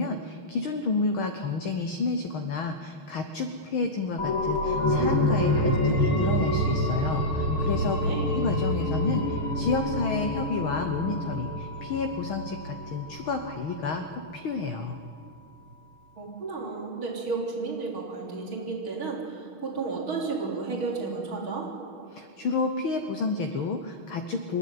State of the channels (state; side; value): late; right; 6.3 ms